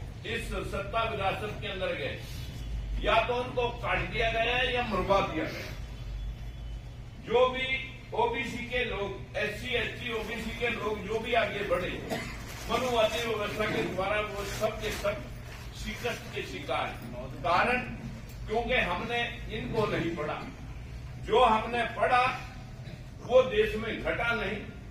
इस सत्ता विरासत के अंदर गए, या तो उनको काट दिया गया है या मरवा दिया गया। जो भी ओबीसी के लोग, एससी एसटी ओबीसी के लोग जो भी आगे बढ़े मनुवादी व्यवस्था के द्वारा, वो सब के सब शिकस्त के शिकार हैं। कारण क्योंकि हमने इनको नहीं पढ़ा। जो हमने पढ़ा वो देश में घटा नहीं,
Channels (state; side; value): identical; both; correlation 1.00